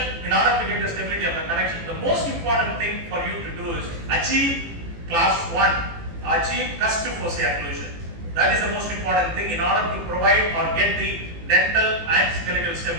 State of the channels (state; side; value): late; left; 18 ms